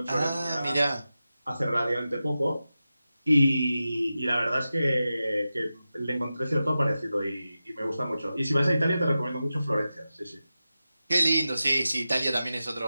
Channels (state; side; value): inverted; both; correlation -0.93